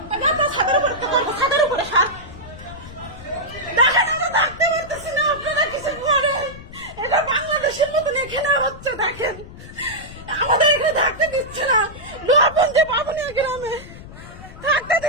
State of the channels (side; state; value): left; noise; rumble, 16 dB below the sound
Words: ছাদের উপরে সার দেখেন আমরা থাকতে পারতেছি না, আপনারা কিছু করেন, এটা বাংলাদেশের মতন এখানে হচ্ছে, দেখেন আমাদের এখানে থাকতে দিচ্ছে না, লোহাপুঞ্জি বাবুনিয়া গ্রামে থাকতে